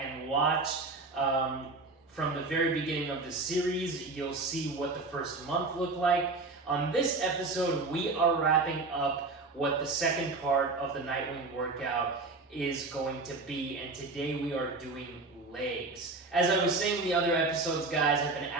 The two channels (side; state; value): left; quieter; 3.6 dB